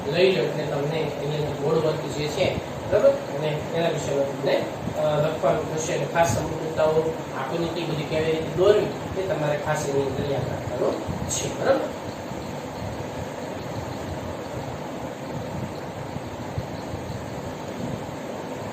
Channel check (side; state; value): both; identical; correlation 1.00